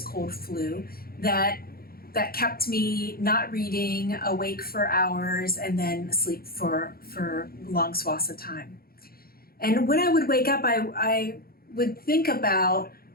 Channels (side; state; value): right; late; 0.44 ms